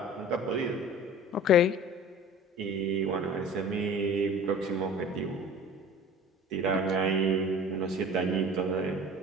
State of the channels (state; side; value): normal; both; correlation 0.42